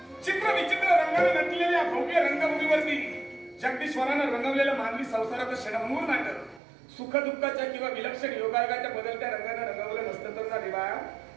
चित्र विचित्र रंगाने नटलेल्या भव्य रंगभूमीवरती जगदीश्वरानं रंगवलेलं मानवी संसाराचं क्षणभंगूर नाटक सुख दुःखाच्या किंवा विलक्षण योगायोगाच्या बदलत्या रंगाने रंगवलं नसतं तर ना देवा,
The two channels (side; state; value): left; drops out; at 6.6 s